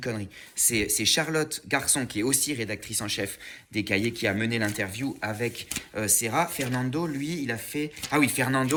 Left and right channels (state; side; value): identical; both; correlation 1.00